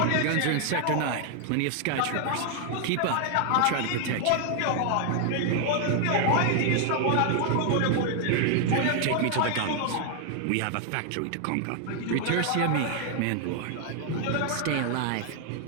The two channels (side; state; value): both; different; correlation 0.00